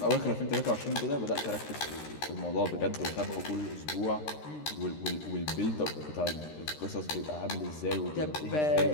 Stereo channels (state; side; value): late; right; 13 ms